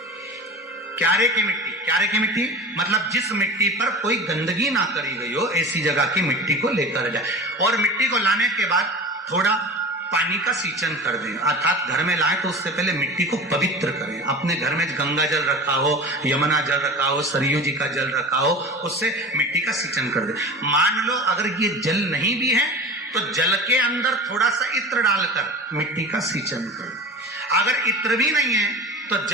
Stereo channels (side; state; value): both; normal; correlation 0.33